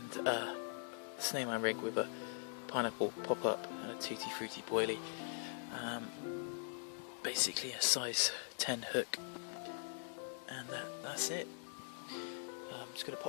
a snowman rig with a pineapple pop-up and a tutti frutti boilie. Basically a size 10 hook, and that's it. I'm just going to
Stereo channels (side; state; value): right; silent; digital silence